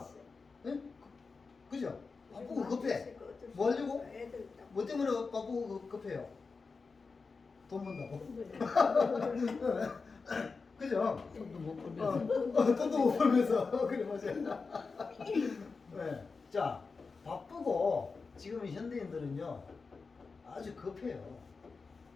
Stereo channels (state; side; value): quieter; right; 4.5 dB